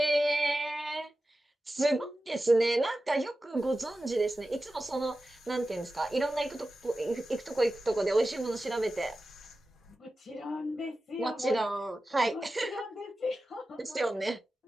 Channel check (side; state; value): both; normal; correlation 0.94